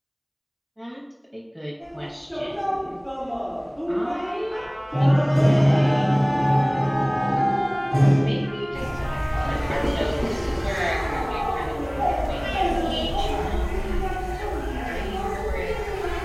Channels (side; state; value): both; identical; correlation 1.00